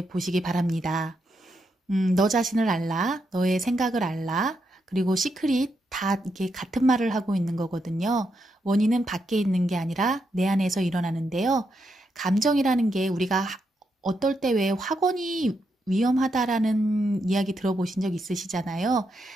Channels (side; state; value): both; normal; correlation 0.82